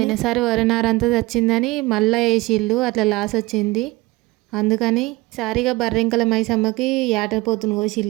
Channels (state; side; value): quieter; left; 21.5 dB